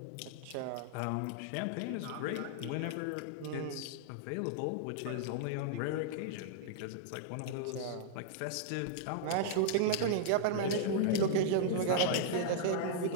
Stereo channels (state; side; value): different; both; correlation -0.01